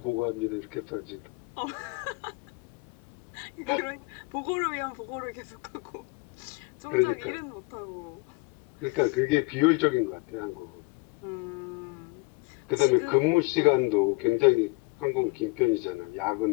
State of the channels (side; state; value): right; quieter; 27.4 dB